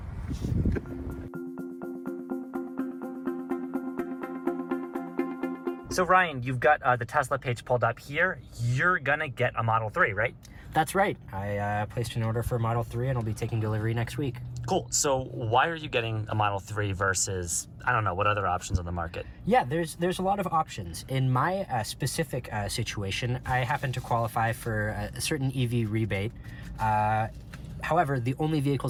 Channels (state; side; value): identical; both; correlation 1.00